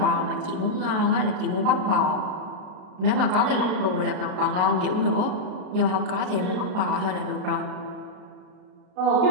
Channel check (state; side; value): late; left; 33 ms